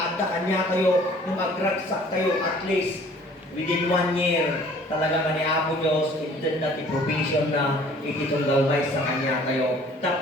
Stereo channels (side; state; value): both; normal; correlation 0.53